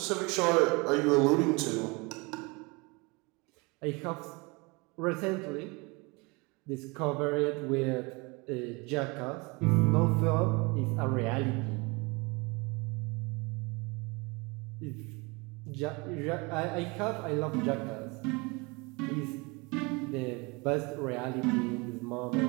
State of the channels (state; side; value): quieter; left; 27.5 dB